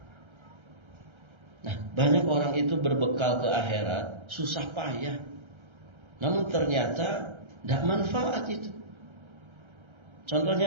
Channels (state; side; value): late; left; 1.3 ms